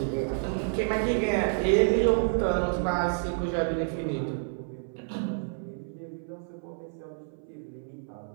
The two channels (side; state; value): left; silent; 58 dB below the other